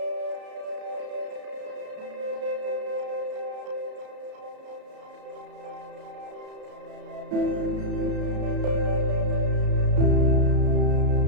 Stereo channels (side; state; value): left; late; 33 ms